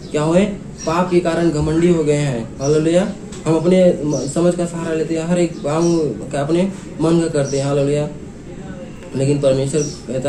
क्या हुए? पाप के कारण घमंडी हो गए हैं। हालेलुया। हम अपने समझ का सहारा लेते हैं, हर एक काम का अपने मन का करते हैं। हालेलुया। लेकिन परमेश्वर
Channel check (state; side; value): identical; both; correlation 1.00